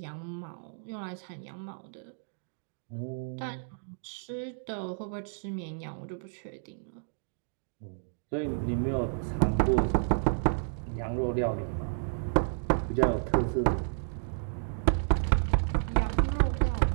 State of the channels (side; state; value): left; silent; digital silence